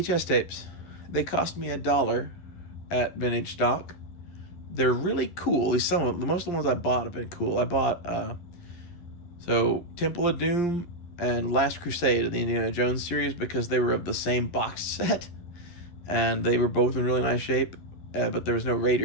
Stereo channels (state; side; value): late; right; 11 ms